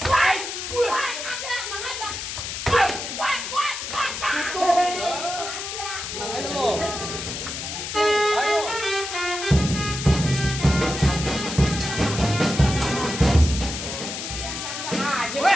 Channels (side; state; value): left; noise; hiss, 6 dB below the sound